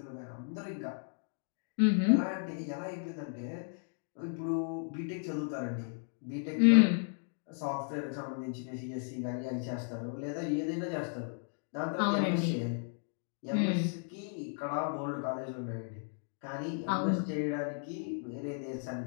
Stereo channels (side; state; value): right; silent; 55 dB below the other